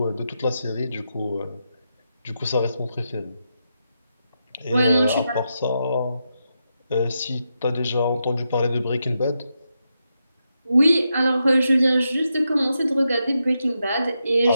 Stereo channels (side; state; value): both; inverted; correlation -0.85